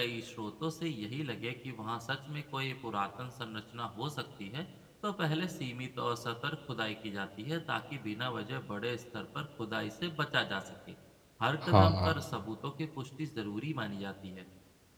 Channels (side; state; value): both; identical; correlation 1.00